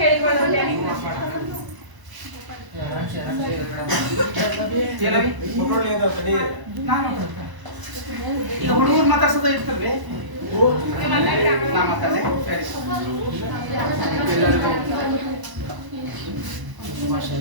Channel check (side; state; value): left; late; 1.0 ms